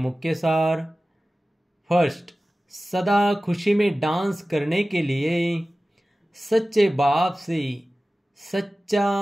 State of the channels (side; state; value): both; normal; correlation 0.96